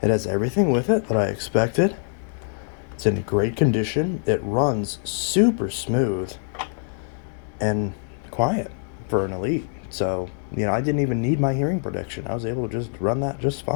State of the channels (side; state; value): right; silent; 63 dB below the other